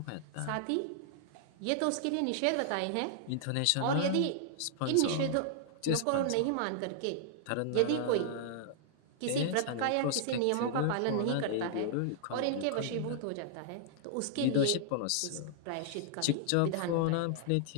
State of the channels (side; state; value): both; different; correlation -0.01